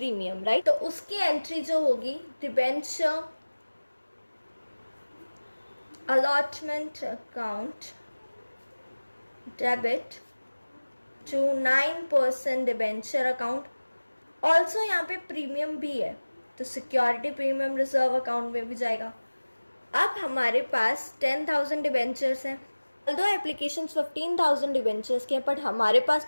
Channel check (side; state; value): both; inverted; correlation -1.00